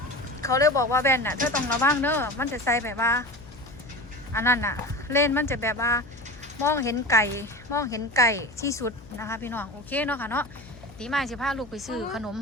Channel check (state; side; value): noise; left; hum, 20 dB below the sound